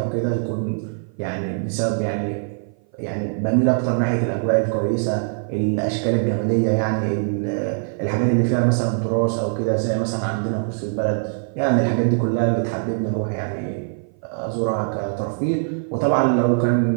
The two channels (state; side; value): silent; left; 57 dB below the other